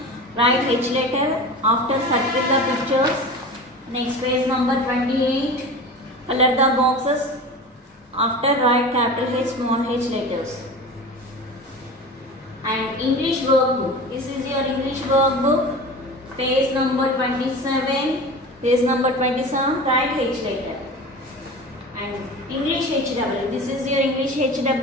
write H letter. After circle the pictures. Next page number 28. Color the boxes. After write capital H, small h letters. And English workbook. This is your English workbook. Page number 27. Page number 27. Write H letter. And English HW. This is your English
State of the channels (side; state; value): both; normal; correlation 0.33